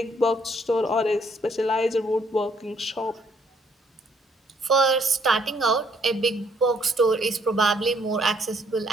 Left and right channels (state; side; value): normal; both; correlation 0.67